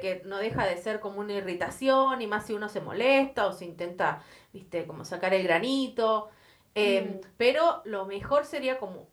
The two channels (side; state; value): both; identical; correlation 1.00